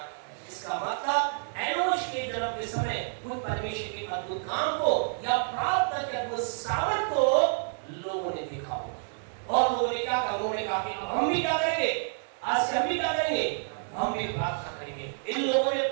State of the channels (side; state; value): left; silent; 59 dB below the other